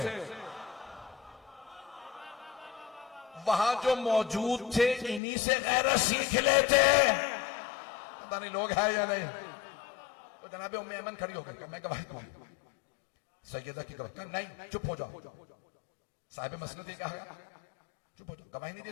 वहां जो मौजूद थे इन्हीं से गैरत सीख लेते। पता नहीं लोग हैं या नहीं। तो जनाबे उम्मे ऐमन खड़ी हो गई, मैं गवाही दूंगी। सैयदा की गवाही, नहीं चुप हो जाओ। साहिब मसनद ने कहा चुप हो जाओ, गवाही नहीं दे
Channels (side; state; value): right; drops out; at 5.2 s